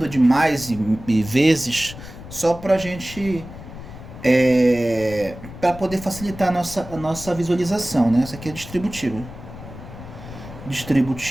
de mais e vezes só para a gente, para poder facilitar a nossa visualização, né? Essa aqui é distributiva.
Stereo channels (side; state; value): left; noise; rumble, 14 dB below the sound